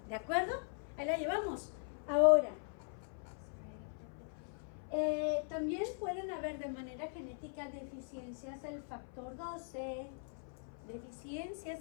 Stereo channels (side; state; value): right; silent; 51 dB below the other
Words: ¿De acuerdo? Ahí la llevamos. Ahora, también pueden haber de manera genética deficiencias del factor 12, deficiencias